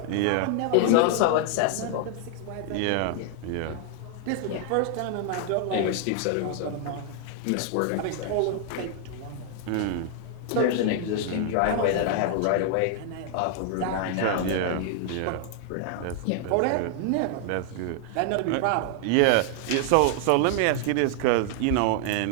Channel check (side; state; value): both; different; correlation 0.00